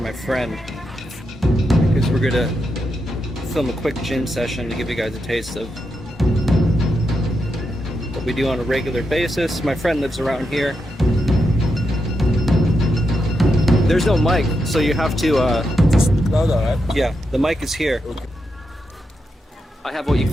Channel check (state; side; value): normal; both; correlation 0.85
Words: friend because we're gonna film a quick gym session to give you guys a taste of what we do on a regular basis. My friend lives around here. There's no mic, so you have to yeah, the mic is here. I have what you